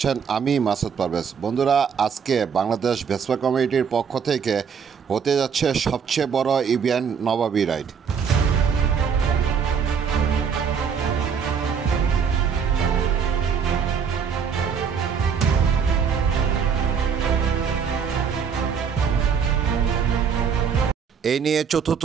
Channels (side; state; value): left; quieter; 6.7 dB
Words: আমি মাসুদ পারভেজ। বন্ধুরা, আজকে বাংলাদেশ ভেসপা কমিটির পক্ষ থেকে হতে যাচ্ছে সবচেয়ে বড় ইভেন্ট নবাবী রাইড। এই নিয়ে